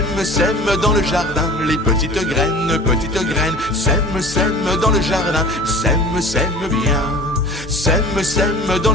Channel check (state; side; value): normal; both; correlation 0.41